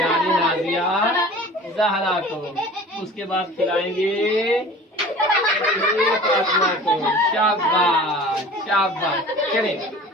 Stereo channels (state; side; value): normal; both; correlation 0.42